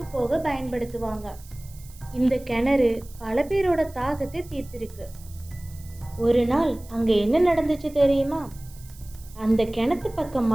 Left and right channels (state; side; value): noise; right; hiss, 23 dB below the sound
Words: போக பயன்படுத்துவாங்க. இந்த கிணறு பல பேரோட தாகத்தை தீர்த்திருக்கு. ஒரு நாள் அங்கே என்ன நடந்துச்சு தெரியுமா? அந்த கிணத்து